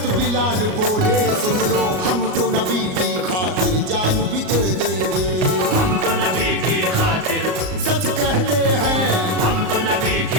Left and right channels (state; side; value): late; left; 38 ms